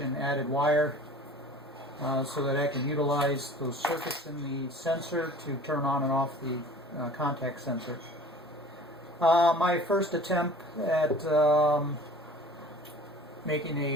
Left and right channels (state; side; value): normal; both; correlation 0.45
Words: added wire so that I can utilize those circuits in the sensor to turn on and off the contact sensor. My first attempt at making